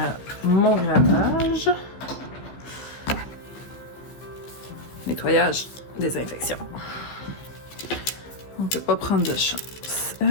mon gravage, nettoyage, désinfection. On ne peut pas prendre de chance.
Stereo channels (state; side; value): late; right; 15 ms